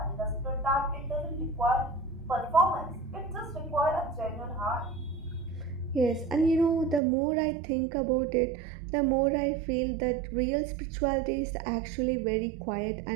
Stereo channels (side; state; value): left; drops out; at 7.0 s